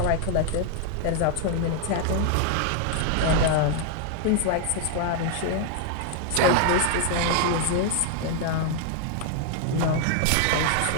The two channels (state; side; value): different; both; correlation 0.00